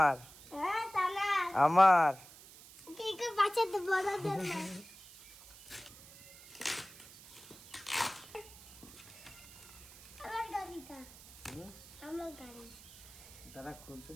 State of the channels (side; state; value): right; noise; hiss, 19 dB below the sound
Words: আমার দাদা খুলতে